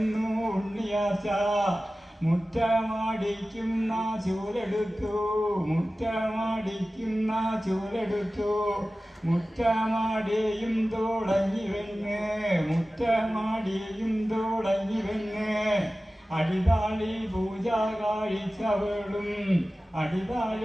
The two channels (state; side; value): normal; both; correlation 0.96